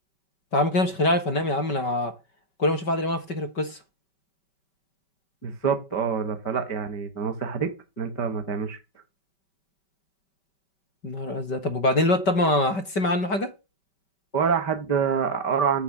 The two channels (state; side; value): late; right; 5.2 ms